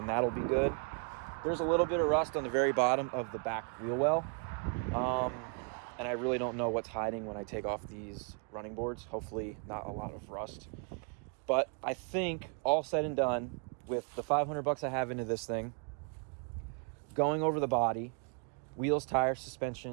that'll be good. There's a little bit of rust on the very bottom of the back wheel well. And I really don't know what's hiding when I take off these running boards. Hopefully not a lot of rust. But I think all said and done, with the $500 I have into this thing, going over the body, wheels, tires,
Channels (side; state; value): left; quieter; 37.4 dB